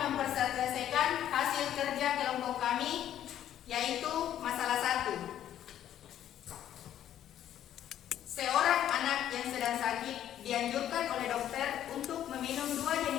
memperselesaikan hasil kerja kelompok kami, yaitu masalah 1. Seorang anak yang sedang sakit dianjurkan oleh dokter untuk meminum 2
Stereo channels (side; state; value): right; quieter; 11.1 dB